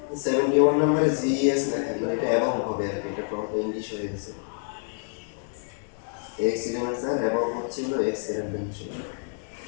হচ্ছে 71 নম্বরে জিএস লেখা, মানে এটা এবং হবে আর কি, এটা ফ্রন্ট ইংলিশ হয়ে গেছে। এক্স এলিমেন্ট স্যার এবং হচ্ছে হলো এক্স এলিমেন্ট ছিল।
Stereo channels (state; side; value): silent; right; 60 dB below the other